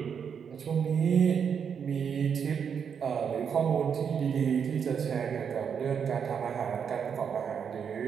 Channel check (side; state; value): left; quieter; 7.1 dB